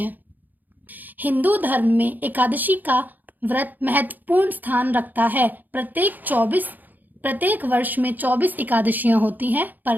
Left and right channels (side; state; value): left; late; 0.085 ms